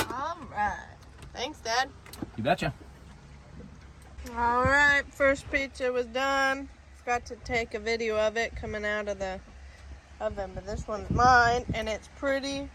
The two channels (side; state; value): both; identical; correlation 1.00